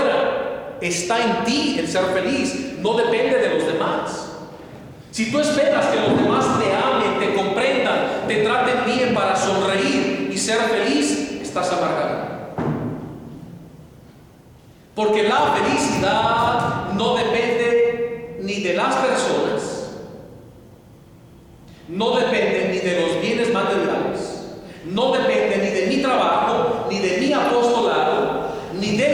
Está en ti el ser feliz, no depende de los demás. Si tú esperas que los demás te amen, te comprendan, te traten bien para sonreír y ser feliz, estás amargado. Porque la felicidad no depende ni de las personas, no depende ni de los bienes materiales, no depende ni de mi trabajo, ni de mi apostolado, ni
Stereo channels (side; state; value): both; identical; correlation 1.00